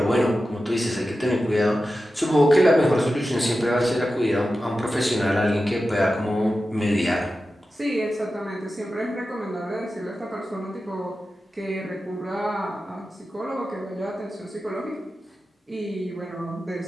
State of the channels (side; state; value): both; normal; correlation 0.93